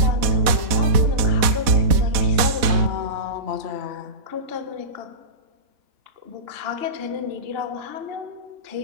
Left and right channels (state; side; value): late; left; 4.0 ms